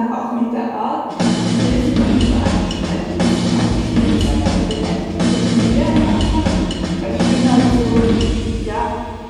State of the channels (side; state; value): both; identical; correlation 1.00